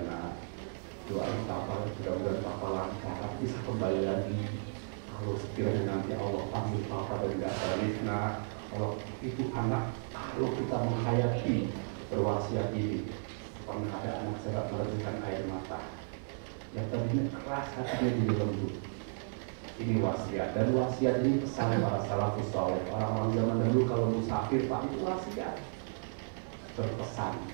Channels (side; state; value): left; silent; 55 dB below the other